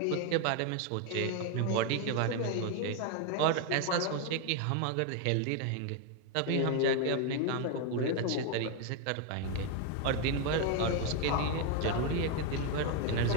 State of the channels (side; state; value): both; different; correlation 0.01